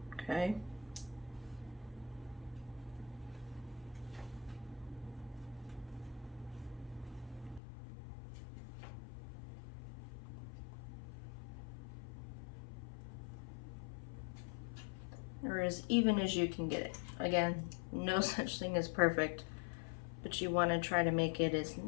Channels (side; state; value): right; drops out; at 7.6 s